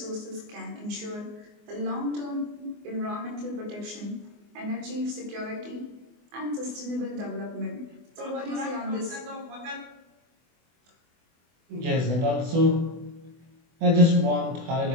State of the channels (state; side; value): late; left; 24 ms